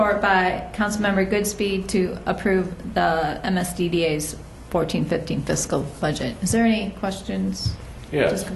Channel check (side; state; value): both; identical; correlation 1.00